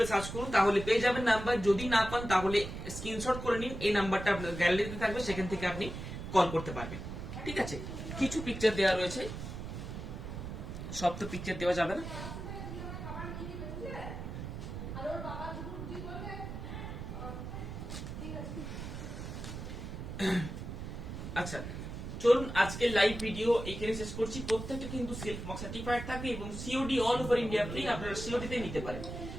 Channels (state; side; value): noise; right; rumble, 8 dB below the sound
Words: সার্চ করুন, তাহলে পেয়ে যাবেন নাম্বার। যদি না পান তাহলে স্ক্রিনশট করে নিন, এই নাম্বারটা আপনার গ্যালারিতে থাকবে, সেখান থেকে আপনি কল করতে পারবেন। ঠিক আছে, কিছু পিকচার দেওয়া রয়েছে, সব তো পিকচার দেওয়া যাবে না। আচ্ছা, চলুন আজকে লাইভ ভিডিও এখানে শেষ করছি। প্রত্যেকটা কিন্তু সিল্ক মার্ক সার্টিফাইড থাকবে, এবং COD all over India free. আপনারা সিওডি তে নিতে পারেন।